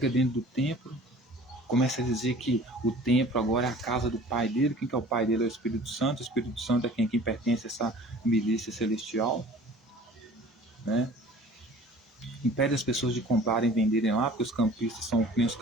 dentro do templo, começa a dizer que o templo agora é a casa do pai dele. Quem que é o pai dele? É o Espírito Santo. O Espírito Santo é quem pertence a essa milícia celestial, né? Impede as pessoas de comprarem e venderem lá, porque os campistas são nem os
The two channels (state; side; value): normal; both; correlation 0.47